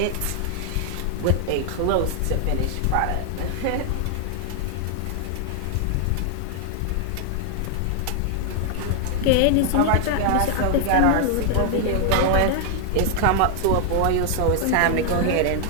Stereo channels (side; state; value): both; different; correlation 0.00